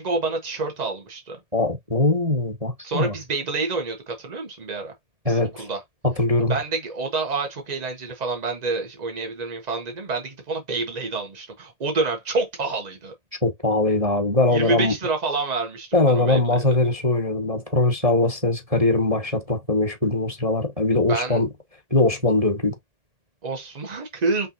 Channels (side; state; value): left; late; 1.7 ms